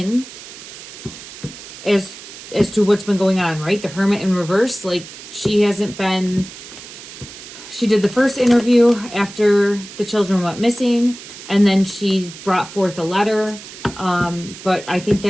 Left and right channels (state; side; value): noise; right; hiss, 15 dB below the sound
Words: as to what's been going on, right? The Hermit in reverse, like she hasn't been... She did the first interview after the children went missing, and then she brought forth a letter. But I think